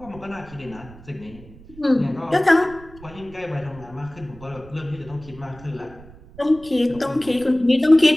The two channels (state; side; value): noise; right; rumble, 20 dB below the sound